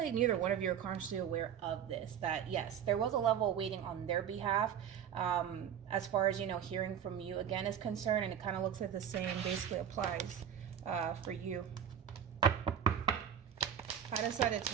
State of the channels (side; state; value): left; quieter; 8.8 dB